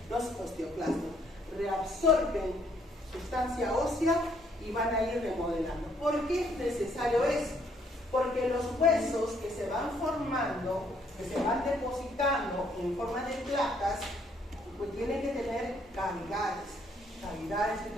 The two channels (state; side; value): normal; both; correlation 0.67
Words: los osteoclastos. Reabsorben sustancia ósea y van a ir remodelando. ¿Por qué es necesario eso? Porque los huesos que se van formando, que se van depositando en forma de placas, pues tienen que tener cavidades. Cavidades